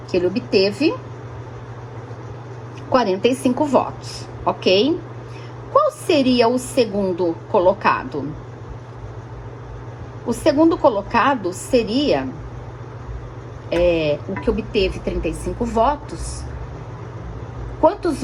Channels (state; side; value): identical; both; correlation 1.00